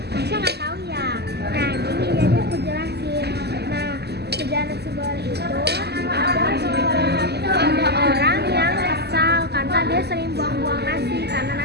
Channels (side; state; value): left; late; 0.48 ms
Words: Nasya nggak tahu ya. Nah gini jadi aku jelasin. Nah kerjaan nasi goreng itu ada orang yang kesal karena dia sering buang-buang nasi